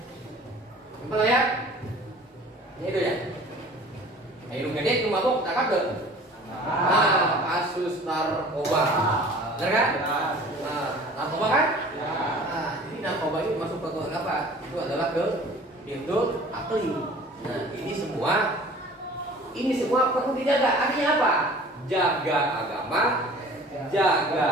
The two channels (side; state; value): both; normal; correlation 0.46